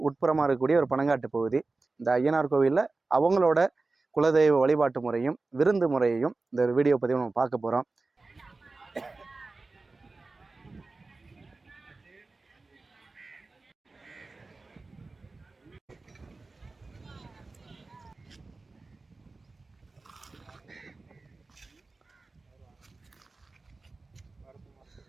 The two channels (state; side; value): quieter; left; 3.6 dB